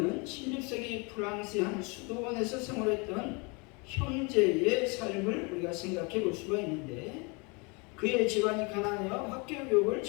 16세기 프랑스의 한 수도원에서 생활했던 형제의 삶을 우리가 생각해 볼 수가 있는데, 그의 집안이 가난하여 학교 교육을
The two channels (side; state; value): right; quieter; 30.4 dB